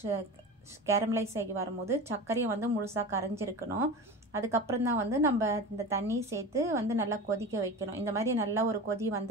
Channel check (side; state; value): both; normal; correlation 0.30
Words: கேரமலைஸ் ஆகி வரும்போது சர்க்கரையை வந்து முழுசாக கரைஞ்சிருக்கணும். அதுக்கப்புறம் தான் வந்து நம்ம இந்த தண்ணி சேர்த்து வந்து நல்லா கொதிக்க வைக்கணும். இந்த மாதிரி நல்லா ஒரு கொதி